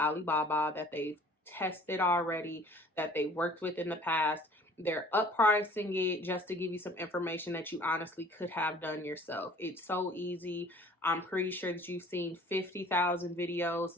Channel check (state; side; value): normal; both; correlation 0.51